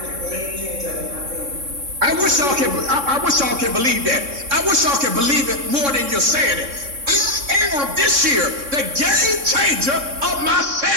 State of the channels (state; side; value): late; left; 3.6 ms